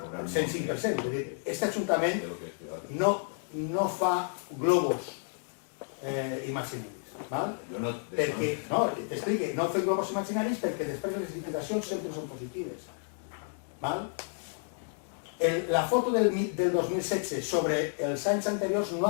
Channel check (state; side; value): silent; right; 57 dB below the other